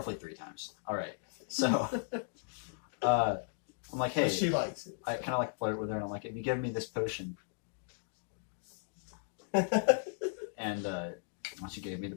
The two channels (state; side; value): silent; right; digital silence